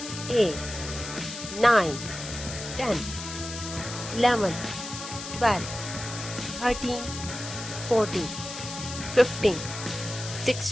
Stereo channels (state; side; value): noise; left; hiss, 9 dB below the sound